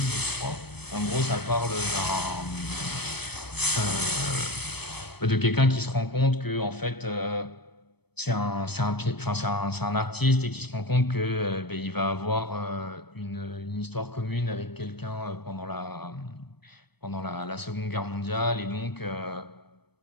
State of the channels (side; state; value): right; late; 0.97 ms